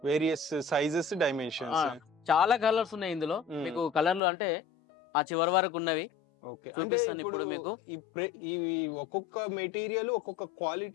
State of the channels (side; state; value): right; drops out; at 4.2 s